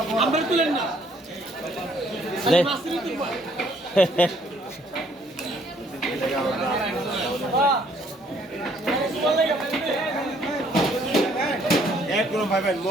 তুলেন না একদম ভাইবেন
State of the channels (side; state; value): both; normal; correlation 0.64